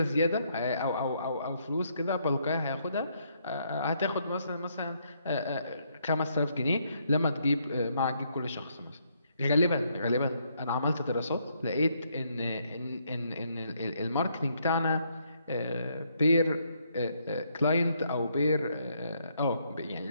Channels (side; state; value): both; inverted; correlation -0.73